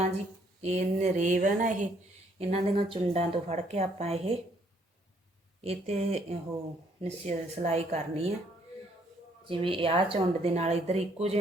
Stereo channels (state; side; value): normal; both; correlation 0.67